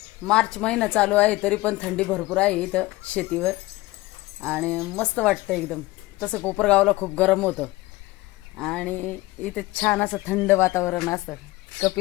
मार्च महिना चालू आहे तरी पण थंडी भरपूर आहे इथं शेतीवर आणि मस्त वाटतं एकदम। तसं कोपरगावला खूप गरम होतं आणि इथे छान असं थंड वातावरण असतं।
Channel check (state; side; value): quieter; right; 19.4 dB